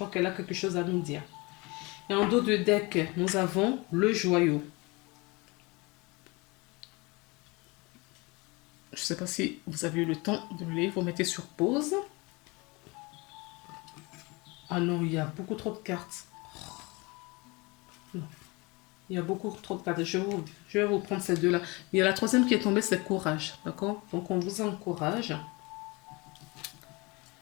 qu'elle a quelque chose à nous dire. Et en dos de deck, nous avons le joyau. Je ne sais pas si vous avez eu le temps de le lire. Vous mettez sur pause. Ah non, il y a beaucoup trop de cartes. Non. Il y a beaucoup trop de cartes. Je vais vous prendre ces deux-là. Il y a la troisième qui est tombée, c'est courage. D'accord. Donc, on vous encourage.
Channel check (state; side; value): quieter; right; 25.8 dB